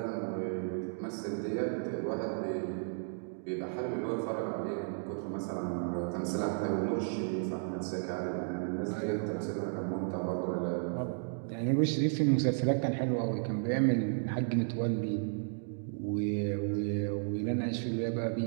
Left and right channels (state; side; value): silent; left; digital silence